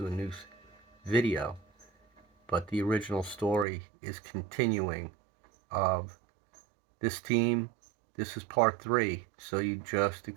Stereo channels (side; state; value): left; drops out; at 3.7 s